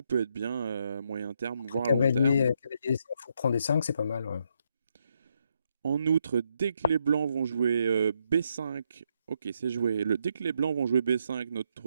peut être bien moyen terme, Entre voire long terme. cavalier D5, faut prendre des 5, c'est pas mal, ouais. En outre, dès que les blancs vont jouer B5, ok, c'est joué. Dès que les blancs vont jouer B5,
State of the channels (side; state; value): both; inverted; correlation -0.77